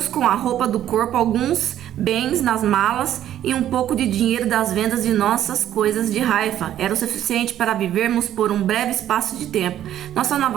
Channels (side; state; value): left; quieter; 11.6 dB